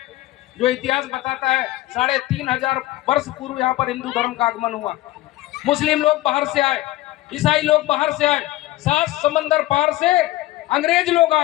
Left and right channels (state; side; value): quieter; right; 16.8 dB